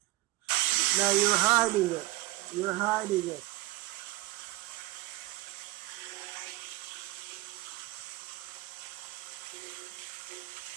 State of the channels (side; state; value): left; quieter; 18.3 dB